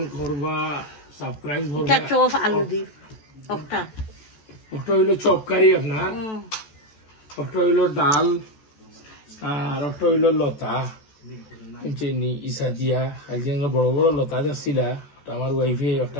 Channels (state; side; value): late; right; 14 ms